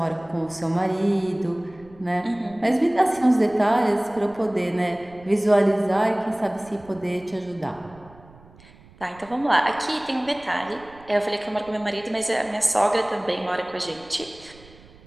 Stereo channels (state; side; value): noise; right; rumble, 24 dB below the sound